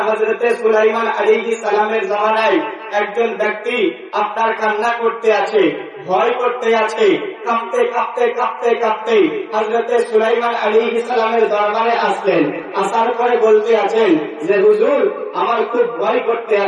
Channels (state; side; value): identical; both; correlation 1.00